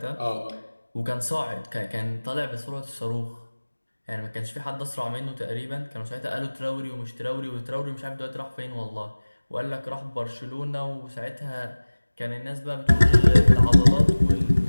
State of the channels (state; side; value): inverted; both; correlation -1.00